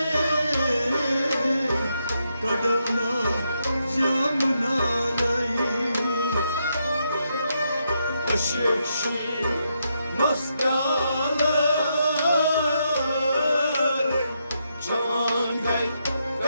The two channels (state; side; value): inverted; both; correlation -0.81